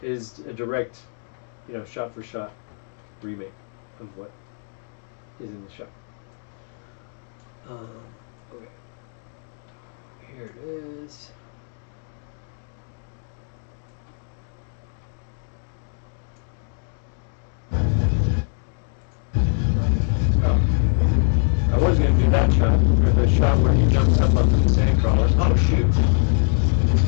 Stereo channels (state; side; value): silent; right; 63 dB below the other